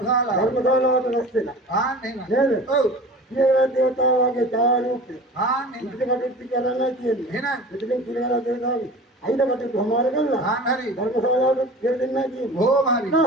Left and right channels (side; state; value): both; normal; correlation 0.38